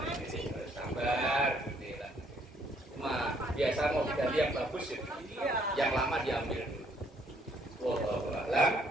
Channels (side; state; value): both; normal; correlation 0.66